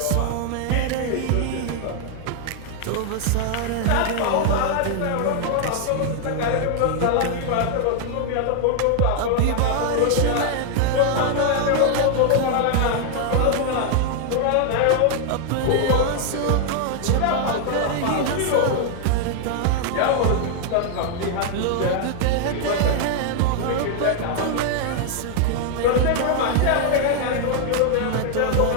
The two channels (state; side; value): different; both; correlation 0.00